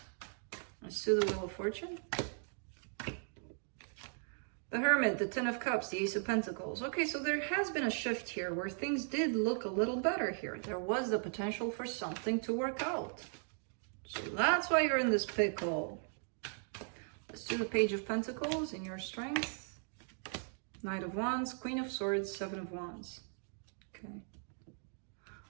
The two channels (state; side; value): silent; left; 52 dB below the other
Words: Let's do the Wheel of Fortune. The Hermit, the Ten of Cups, the Ace of Pentacles. Okay, so there has been a shift here where things did look a little better here. There was the potential for something to work out. So that's why you're in this pickle. Let's do the Page of Pentacles in your strength. Knight of Wands, Queen of Swords, Seven of Wands. Okay.